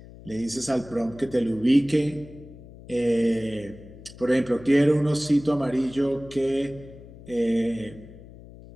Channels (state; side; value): noise; left; hum, 18 dB below the sound